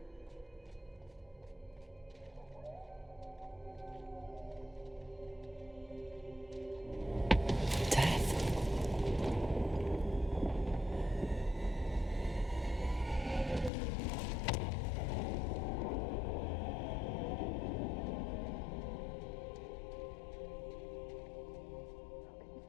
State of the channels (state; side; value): drops out; right; at 13.7 s